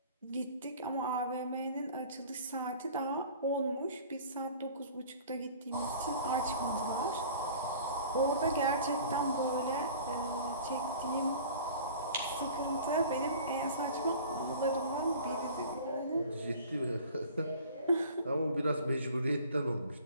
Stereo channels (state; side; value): inverted; both; correlation -0.45